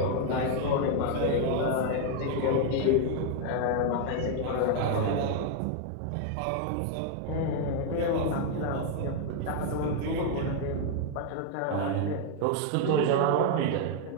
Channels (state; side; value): different; both; correlation 0.00